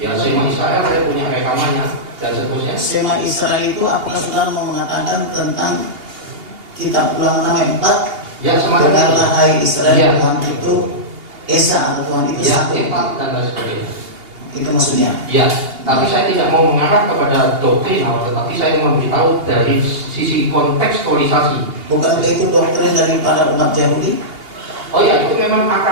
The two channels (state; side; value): late; left; 2.8 ms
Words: Shema Israel saya punya rekamannya dan seterusnya. Shema Israel itu apakah saudara mau mengatakan tentang kitab Ulangan 4? Ya, semacam dengarlah hai Israel, ya. Tuhan itu Esa atau Tuhan itu ya, satu. dan lain sebagainya. Itu maksudnya. Ya, tapi saya tidak mau mengarah kepada doktrin, tetapi saya memberitahu dari sisi kontekstualisasi. Bukankah itu doktrin daripada umat Yahudi? Oh ya, itu memang